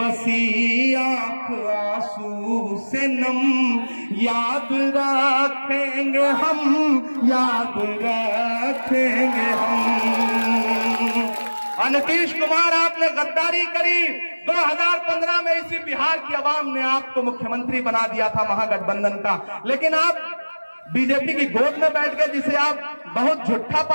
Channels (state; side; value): inverted; both; correlation -1.00